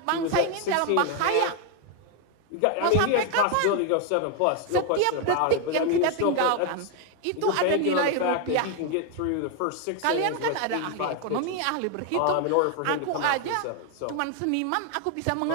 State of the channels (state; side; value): different; both; correlation 0.01